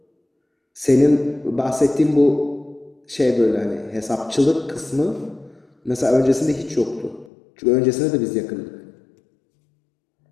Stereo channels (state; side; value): drops out; right; at 7.3 s